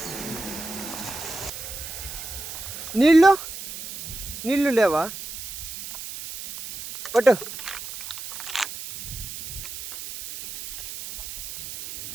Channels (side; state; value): right; noise; hiss, 9 dB below the sound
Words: నీళ్ళు నీళ్ళు లేవా పట్టు.